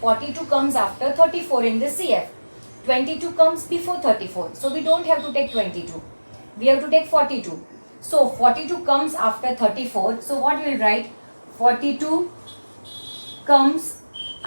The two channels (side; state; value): both; inverted; correlation -1.00